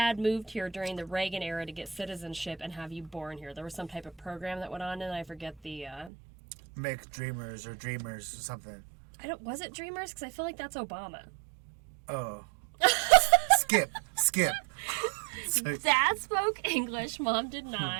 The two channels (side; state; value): left; drops out; at 6.1 s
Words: moved here during the Reagan era to get citizenship and have you born here. There was some type of program that went on, and I forget the. Make Dreamers or Dreamers or something. Was it Dreamers? Because I feel like that's Obama. Oh. Skip. Dad spoke English. Mom did